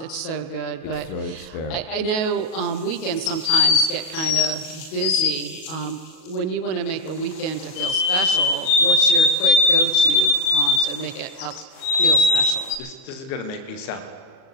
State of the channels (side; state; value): right; late; 38 ms